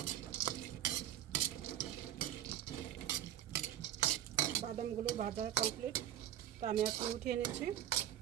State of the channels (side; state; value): left; quieter; 11.5 dB